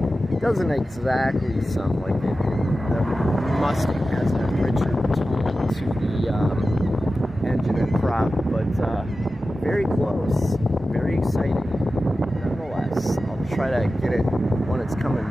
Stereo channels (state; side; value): normal; both; correlation 0.94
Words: doesn't exactly sound like it. The Mustang has a richer tone to the engine and prop, but very close, very exciting. Nonetheless, I'll try to get it when it's